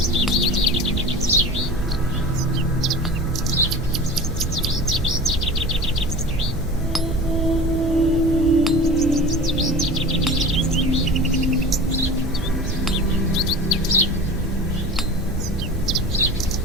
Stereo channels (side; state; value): both; normal; correlation 0.36